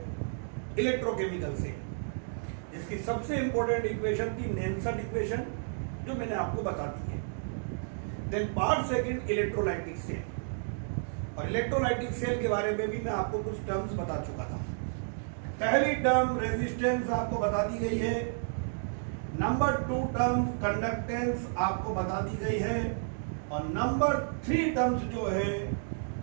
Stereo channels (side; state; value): left; silent; digital silence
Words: इलेक्ट्रोकेमिकल से, जिसकी सबसे इंपॉर्टेंट इक्वेशन थी नेल्सन इक्वेशन, जो मैंने आपको बता दी है। देन पार्ट 2 इलेक्ट्रोलाइटिक सेल, और इलेक्ट्रोलाइटिक सेल के बारे में भी मैं आपको कुछ टर्म्स बता चुका था। पहली टर्म रेजिस्टेंस आपको बता दी गई है। नंबर 2 टर्म कंडक्टेंस आपको बता दी गई है, और नंबर 3 टर्म्स जो है